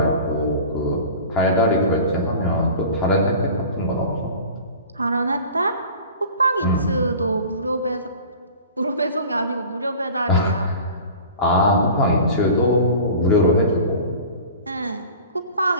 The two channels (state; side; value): inverted; both; correlation -0.40